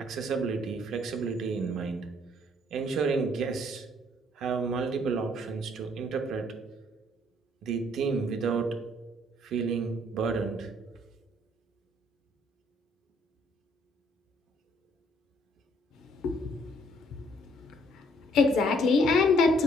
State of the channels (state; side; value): normal; both; correlation 0.64